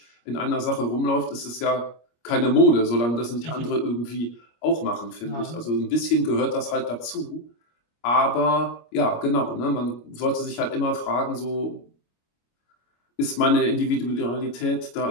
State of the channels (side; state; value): right; late; 25 ms